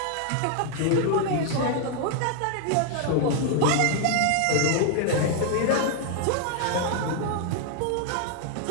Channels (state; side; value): different; both; correlation 0.00